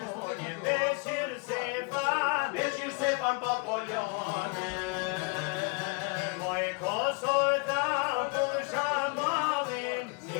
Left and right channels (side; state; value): right; quieter; 31.1 dB